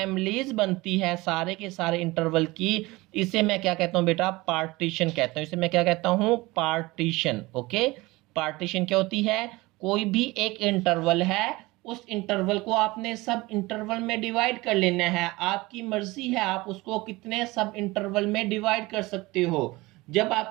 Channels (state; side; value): quieter; left; 21.4 dB